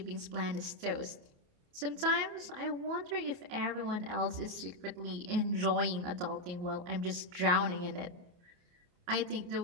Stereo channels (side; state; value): left; late; 28 ms